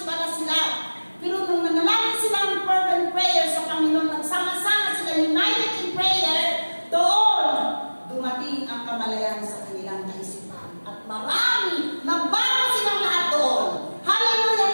pala sila. Pero nung nanalangin sila ng fervent prayer sa Panginoon, nagsama-sama sila united in prayer, doon dumating ang kamalayan sa kanilang kaisipan. At marami, nabago silang lahat doon. Hallelujah!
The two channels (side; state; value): both; inverted; correlation -1.00